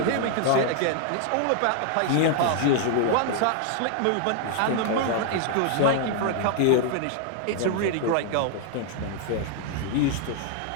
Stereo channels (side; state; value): both; different; correlation 0.00